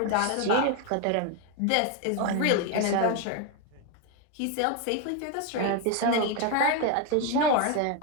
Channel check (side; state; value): both; different; correlation 0.01